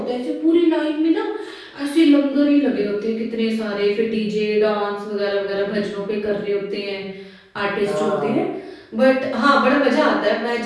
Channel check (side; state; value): both; identical; correlation 1.00